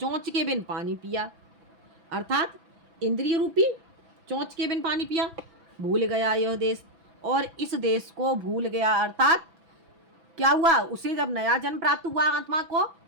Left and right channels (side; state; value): left; late; 6.0 ms